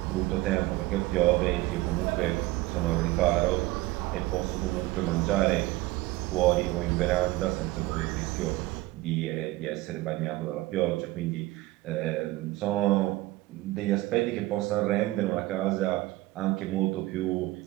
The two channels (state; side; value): quieter; left; 18.6 dB